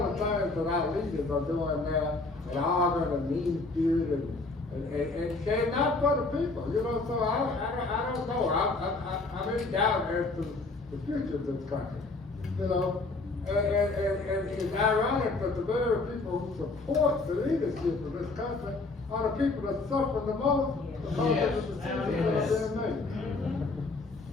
the things that our leaders are doing now, and arguing and mean spirit and they're not for the people, you know, so I don't know. I'm in doubt as to the future of this country, you know. And it's ironic that the very people who support the leadership of this country are the people that suffer the most because of the decisions that are being made.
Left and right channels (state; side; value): quieter; right; 3.5 dB